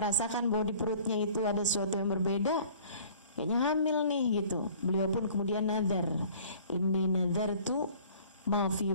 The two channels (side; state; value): both; inverted; correlation -0.51